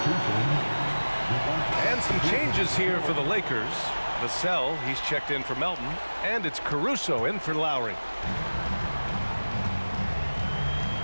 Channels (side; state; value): both; inverted; correlation -1.00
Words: And some changes here for the Lakers. Vassell, he's checked in for Melton. And it's Caruso in for Lowry.